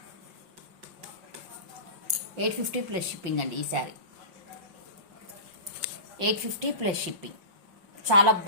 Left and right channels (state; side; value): late; left; 5.6 ms